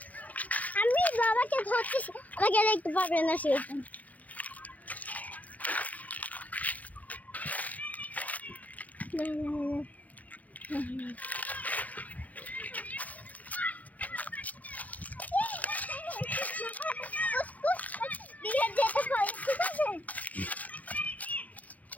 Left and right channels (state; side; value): late; right; 0.076 ms